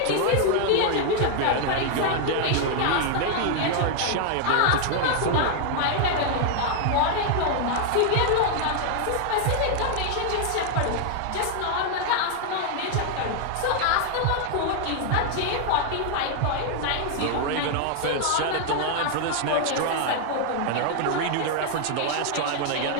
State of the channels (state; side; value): different; both; correlation 0.00